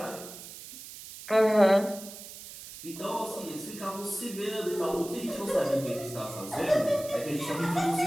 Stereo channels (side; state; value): right; noise; hiss, 14 dB below the sound